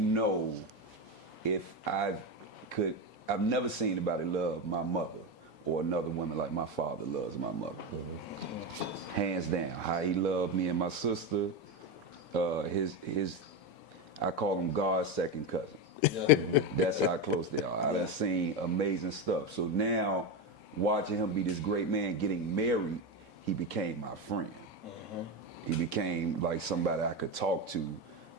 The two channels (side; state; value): both; normal; correlation 0.14